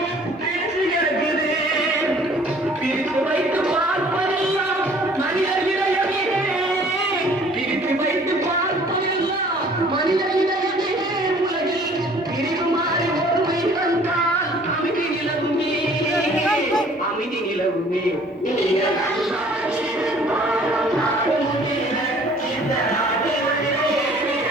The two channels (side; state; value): both; normal; correlation 0.54